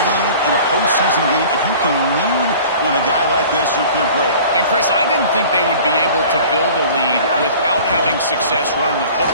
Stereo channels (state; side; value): inverted; both; correlation -0.45